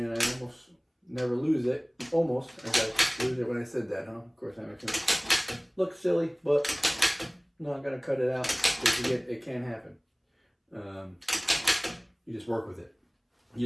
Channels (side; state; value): both; identical; correlation 1.00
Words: I almost never lose it. Almost, I gotta lose it when I said that, huh? Of course, that makes me look silly, but I'm not gonna cut it out because it can happen. You just work with it. You